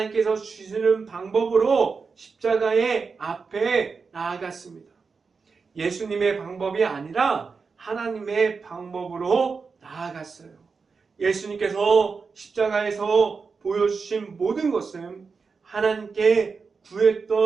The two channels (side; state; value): left; quieter; 5.0 dB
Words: 주시는 방법으로 십자가의 앞에 나아갔습니다. 예수님의 방법이 아니라 하나님의 방법으로 나아갔어요. 예수님께서 십자가에서 보여주신 모든 것은 하나님께